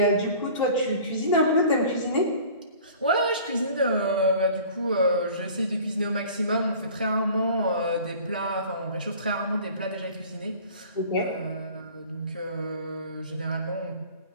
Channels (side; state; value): both; inverted; correlation -0.45